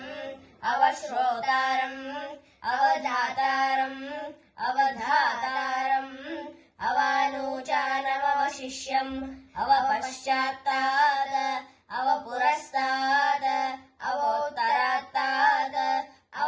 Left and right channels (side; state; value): both; identical; correlation 1.00